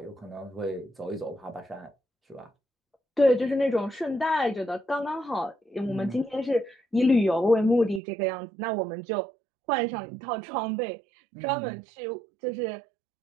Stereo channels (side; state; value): left; drops out; at 8.0 s